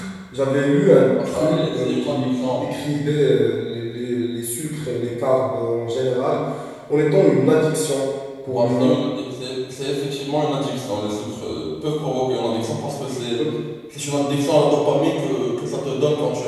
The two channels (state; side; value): identical; both; correlation 1.00